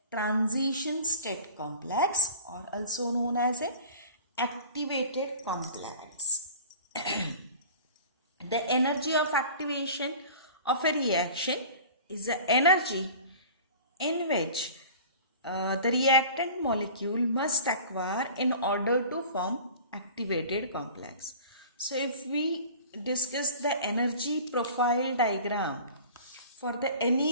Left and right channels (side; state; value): both; inverted; correlation -0.41